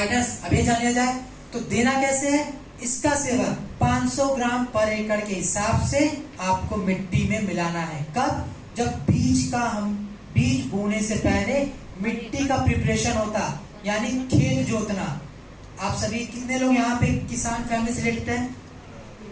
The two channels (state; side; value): identical; both; correlation 1.00